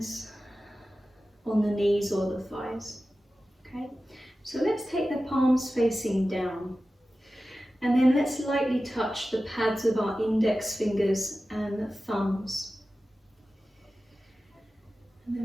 on the knees or the thighs. Okay, so let's take the palms facing down, and then let's lightly touch the pads of our index fingers and thumbs. And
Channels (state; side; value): normal; both; correlation 0.94